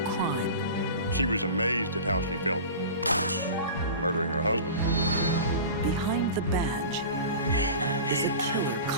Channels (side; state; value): both; inverted; correlation -0.35